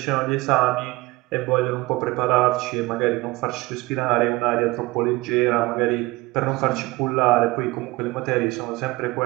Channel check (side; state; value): left; quieter; 21.4 dB